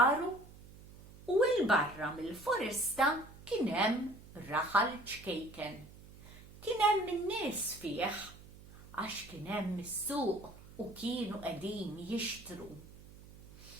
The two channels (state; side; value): noise; right; hum, 19 dB below the sound